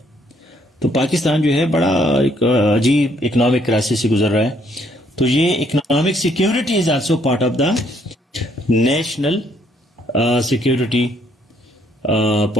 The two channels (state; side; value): normal; both; correlation 0.68